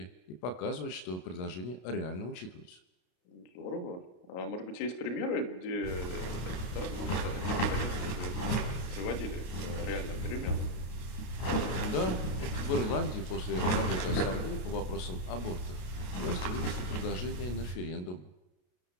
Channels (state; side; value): late; right; 32 ms